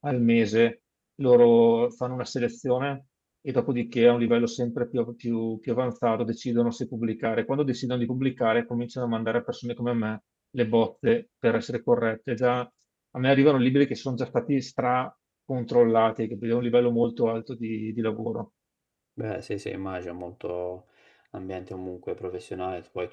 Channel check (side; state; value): both; identical; correlation 1.00